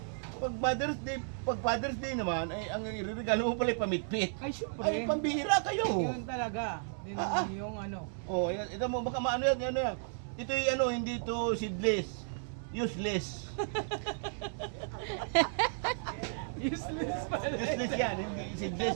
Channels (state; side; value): silent; left; 55 dB below the other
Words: pag Father's Day naman, ay ang iregalo mo pala ay pamitpit. Ay, syempre. Ay, pambihira kayo. Yun talaga. Yung ano. Oh, ito mo, baka maano yan, ano yan. Ito yung ano, hindi ito seedless. Useless. Useless pala. Useless yan, hindi seedless